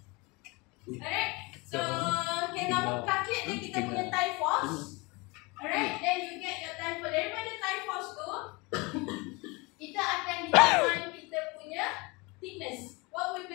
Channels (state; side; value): quieter; right; 26.2 dB